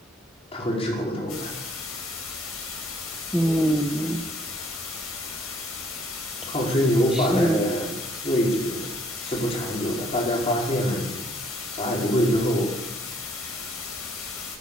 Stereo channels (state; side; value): normal; both; correlation 0.63